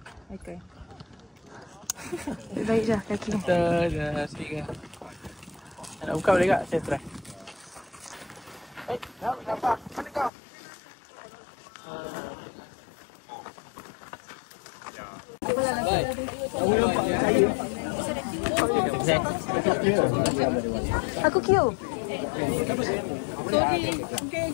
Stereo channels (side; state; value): right; drops out; at 10.3 s